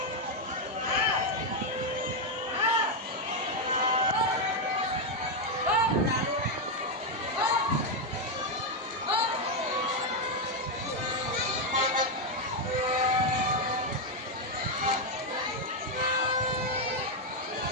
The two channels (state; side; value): normal; both; correlation 0.03